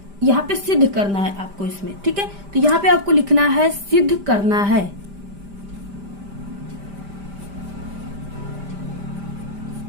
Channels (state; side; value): late; left; 5.0 ms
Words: पे सिद्ध करना है आपको इसमें, ठीक है। तो यहाँ पे आपको लिखना है सिद्ध करना है।